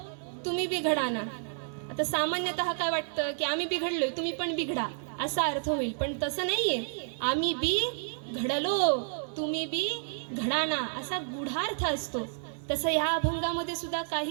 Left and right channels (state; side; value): silent; left; digital silence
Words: तुम्ही बिघडा ना. आता सामान्यतः काय वाटतं की आम्ही बिघडलोय तुम्ही पण बिघडा, असा अर्थ होईल, पण तसं नाहीये. आम्ही बी घडलो तुम्ही बी घडाना, असा गूढार्थ असतो. तसं ह्या अभंगामध्ये सुद्धा